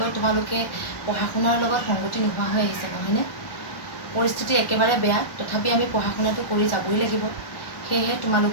তোমালোকে পঢ়া শুনাৰ লগত সংগতি নোহোৱা হৈ আহিছে, নহয়নে? পৰিস্থিতি একেবাৰে বেয়া, তথাপি আমি পঢ়া শুনাটো কৰি যাবই লাগিব। সেয়েহে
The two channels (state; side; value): late; right; 1.4 ms